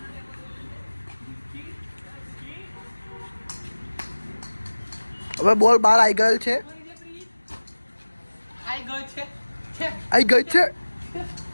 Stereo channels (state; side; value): inverted; both; correlation -1.00